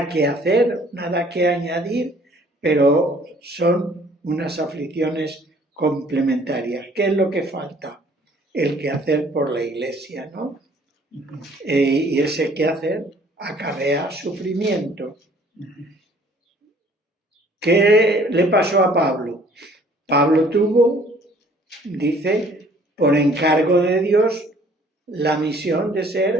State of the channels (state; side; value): normal; both; correlation 0.57